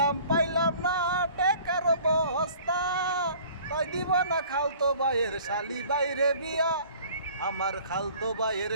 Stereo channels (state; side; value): inverted; both; correlation -0.50